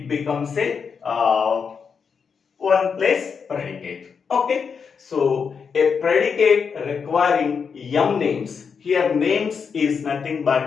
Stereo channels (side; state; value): right; quieter; 6.1 dB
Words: becomes a 1 plus predicate. Okay, so a predicate requiring M names. Here names is nothing